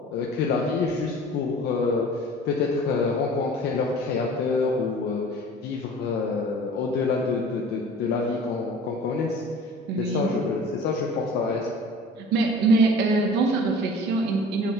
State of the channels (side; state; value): both; normal; correlation 0.44